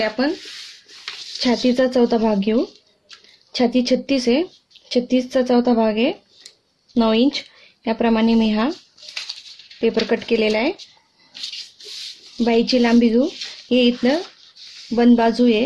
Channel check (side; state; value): both; identical; correlation 1.00